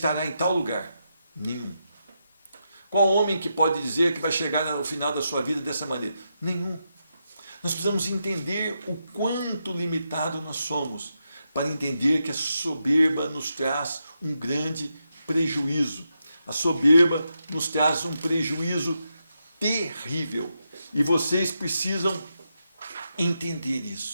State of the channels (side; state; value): both; inverted; correlation -0.85